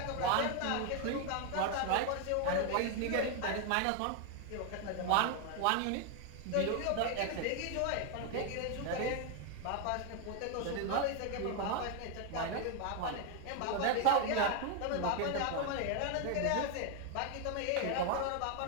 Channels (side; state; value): both; different; correlation 0.01